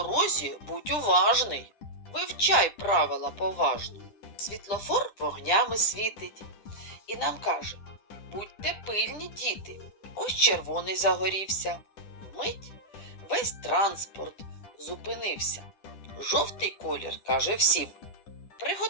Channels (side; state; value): right; late; 10 ms